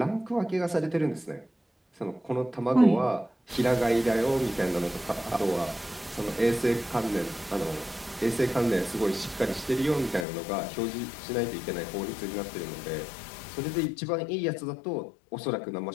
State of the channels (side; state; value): right; drops out; at 10.2 s